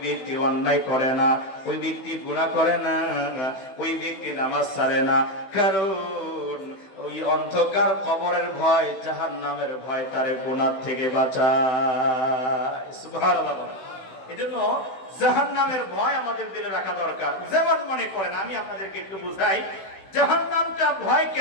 ব্যক্তি অন্যায় করে না, ওই ব্যক্তি গুনাহ করে না, ওই ব্যক্তি নামাজ ছাড়ে না। কারণ ওই অন্ধকার কবরের ভয়, জাহান্নামের ভয় তারে গুনাহ থেকে বাঁচায়। সুবহানাল্লাহ। এজন্য জাহান্নামের ভয় আমাদের দিলে রাখা দরকার। যেমন মনে করেন, আমি আপনাদেরকে একটু বুঝাই জাহান্নামটা ভয়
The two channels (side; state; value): right; late; 16 ms